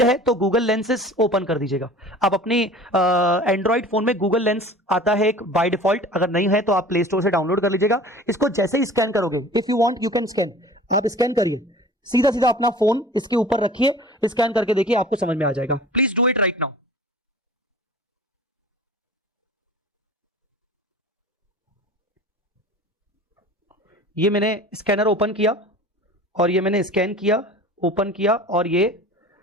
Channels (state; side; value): normal; both; correlation 0.42